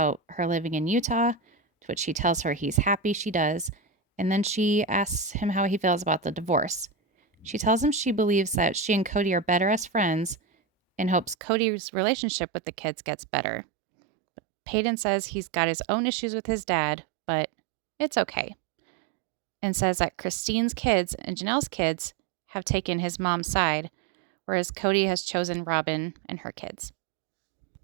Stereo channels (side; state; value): left; drops out; at 11.4 s